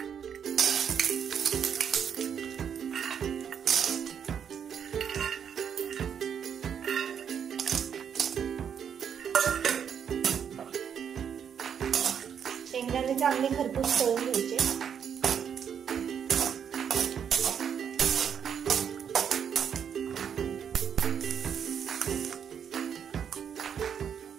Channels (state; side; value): quieter; left; 8.0 dB